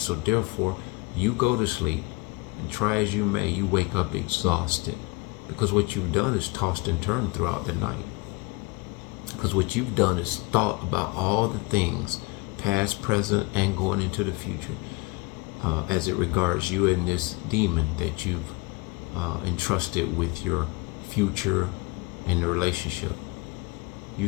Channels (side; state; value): right; quieter; 24.5 dB